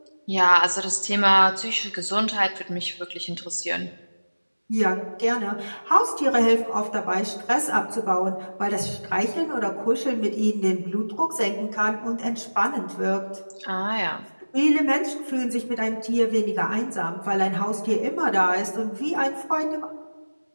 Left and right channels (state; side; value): inverted; both; correlation -1.00